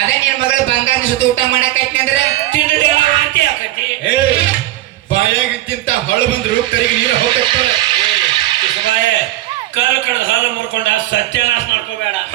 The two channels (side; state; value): left; quieter; 15.4 dB